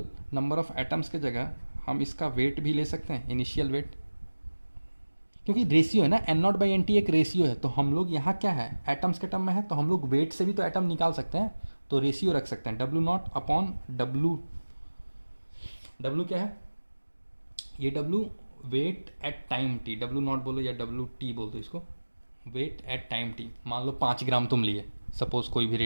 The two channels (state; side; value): inverted; both; correlation -1.00